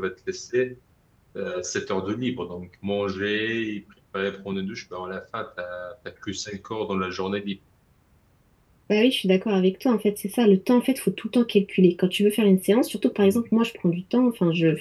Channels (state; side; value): identical; both; correlation 1.00